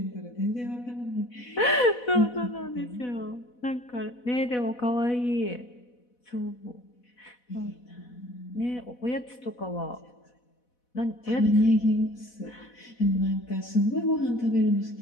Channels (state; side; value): late; right; 4.1 ms